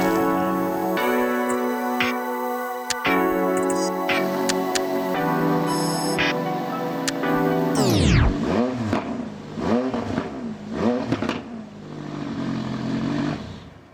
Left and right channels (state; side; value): identical; both; correlation 1.00